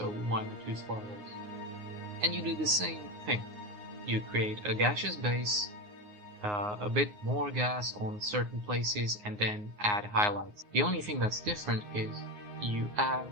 why not two spirals? And you do the same thing. You create a gaseous base, a bit more gas on certain places, and then add highlights. The only thing that's different is you add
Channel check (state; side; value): late; left; 9.6 ms